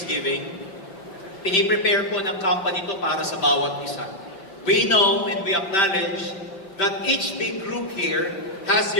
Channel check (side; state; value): right; late; 5.2 ms